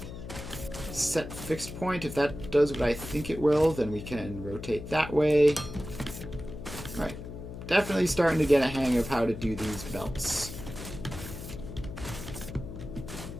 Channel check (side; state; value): left; noise; hum, 10 dB below the sound